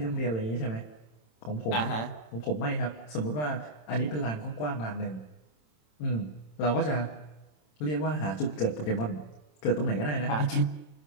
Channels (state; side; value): late; right; 27 ms